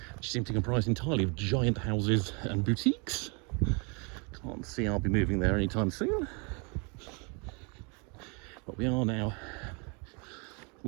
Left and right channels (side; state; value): left; quieter; 32.9 dB